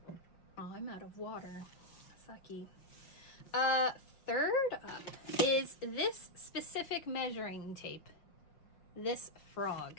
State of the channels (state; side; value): late; right; 5.7 ms